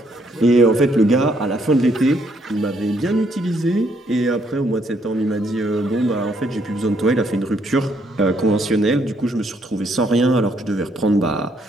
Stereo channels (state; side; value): normal; both; correlation 0.71